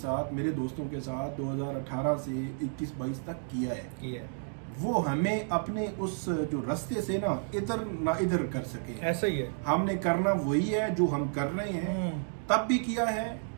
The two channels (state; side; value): silent; left; digital silence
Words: ساتھ، میرے دوستوں کے ساتھ 2018 سے 21-22 تک کیا ہے. وہ ہمیں اپنے اس جو رستے سے نا ادھر نہ ادھر کر سکے. ایسا ہی ہے، ہم نے کرنا وہی ہے جو ہم کر رہے ہیں، تب بھی کیا ہے.